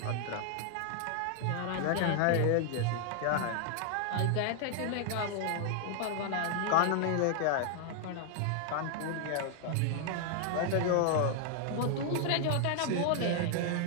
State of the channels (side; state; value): both; different; correlation 0.00